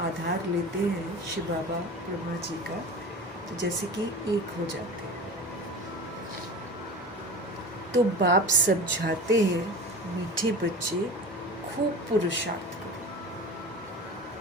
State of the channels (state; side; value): normal; both; correlation 0.33